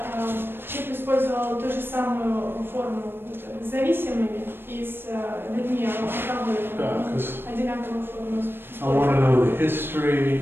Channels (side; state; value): left; late; 0.10 ms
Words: Чип использовал ту же самую форму с зависимыми и с людьми алкоголиками. Одинаковую форму. I want to know the